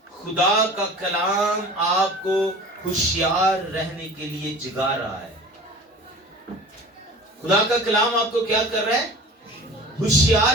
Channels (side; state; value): both; normal; correlation 0.40